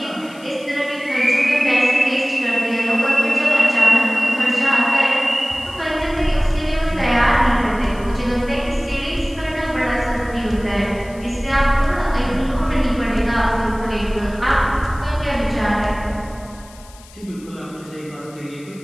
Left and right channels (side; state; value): left; noise; hiss, 23 dB below the sound